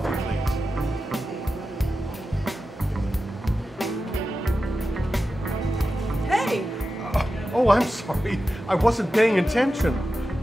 please? Hey! Oh, I'm sorry. I wasn't paying attention.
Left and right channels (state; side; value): normal; both; correlation 0.92